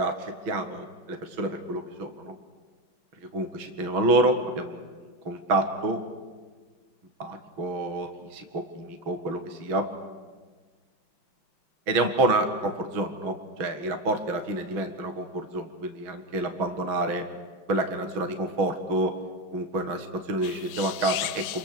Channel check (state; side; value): late; left; 6.2 ms